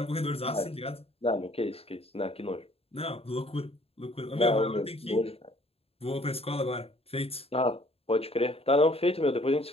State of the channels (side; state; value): right; late; 0.28 ms